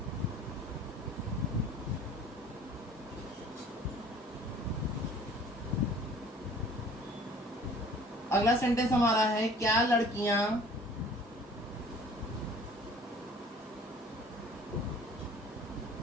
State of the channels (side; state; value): both; normal; correlation 0.51